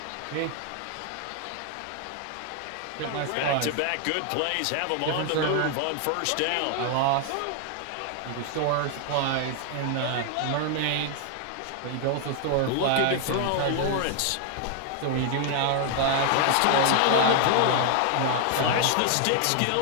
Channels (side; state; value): both; different; correlation 0.00